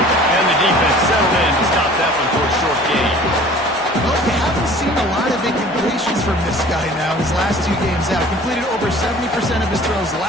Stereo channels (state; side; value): normal; both; correlation 0.47